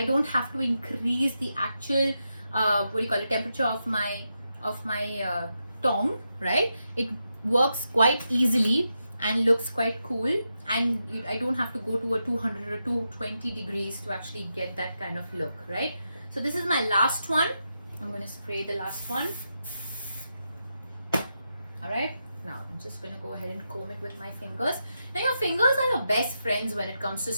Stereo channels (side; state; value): both; inverted; correlation -0.86